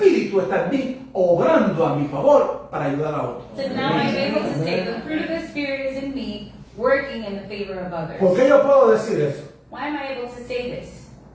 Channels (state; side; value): identical; both; correlation 1.00